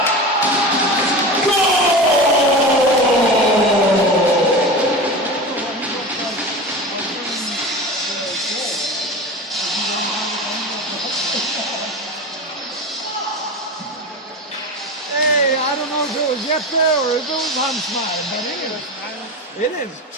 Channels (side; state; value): both; normal; correlation 0.28